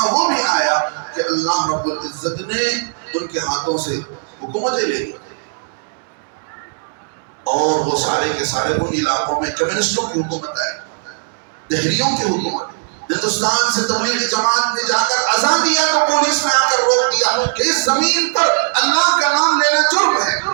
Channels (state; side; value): silent; left; digital silence